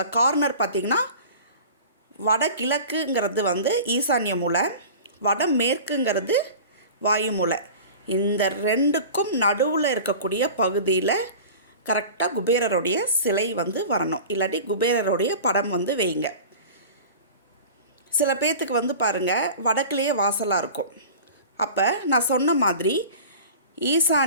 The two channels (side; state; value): both; inverted; correlation -0.38